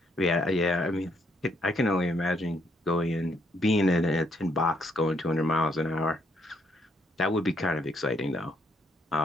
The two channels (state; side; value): normal; both; correlation 0.71